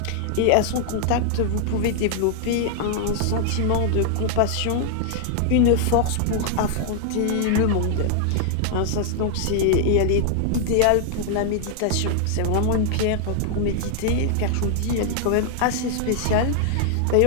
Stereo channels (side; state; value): both; different; correlation 0.00